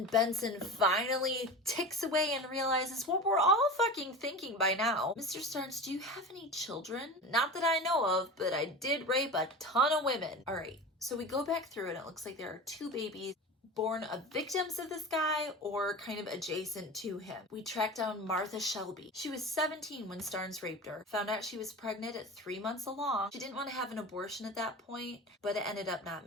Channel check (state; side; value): normal; both; correlation 0.31